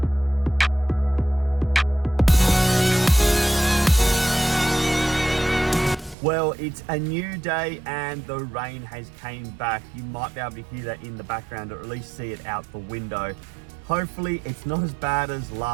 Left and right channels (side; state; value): left; drops out; at 6.2 s